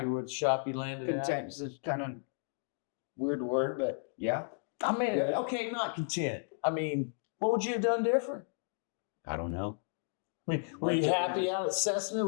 Yeah. with the shop you landed at? Content is kind of weird word, but yeah. I mean, Yeah. okay, not content. I mean, what would you have done different? I don't know. I mean, were you happy out at Cessna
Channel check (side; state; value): right; silent; digital silence